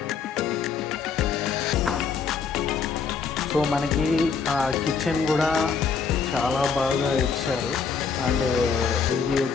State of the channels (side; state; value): right; quieter; 5.8 dB